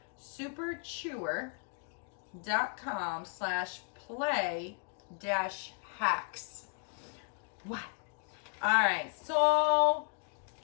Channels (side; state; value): right; quieter; 37.8 dB